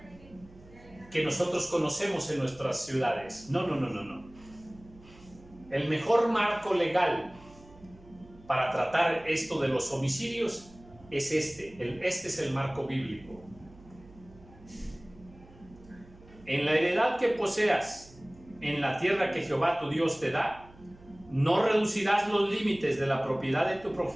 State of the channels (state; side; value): noise; right; hum, 23 dB below the sound